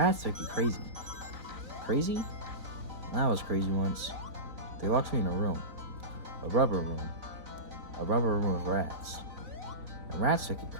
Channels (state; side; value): late; left; 3.8 ms